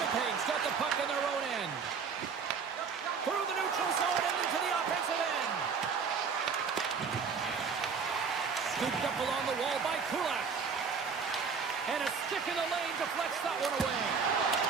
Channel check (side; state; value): left; quieter; 5.8 dB